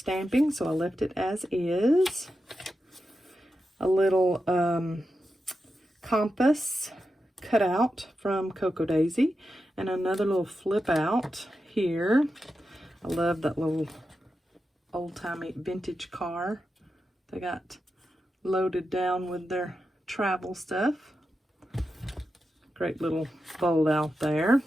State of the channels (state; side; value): normal; both; correlation 0.89